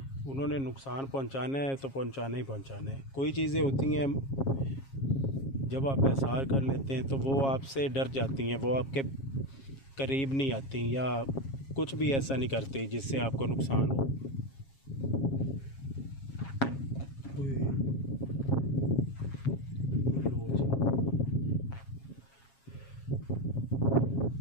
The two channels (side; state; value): right; late; 7.4 ms